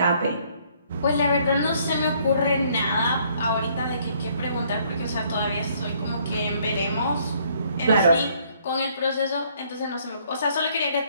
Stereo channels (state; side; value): inverted; both; correlation -0.64